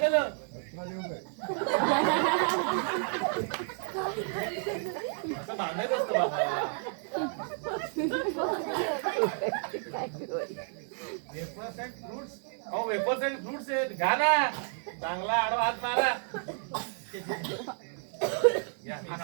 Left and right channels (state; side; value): silent; left; 57 dB below the other